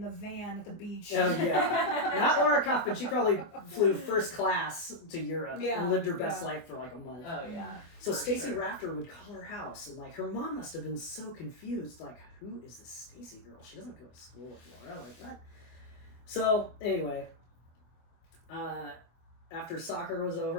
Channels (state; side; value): late; right; 24 ms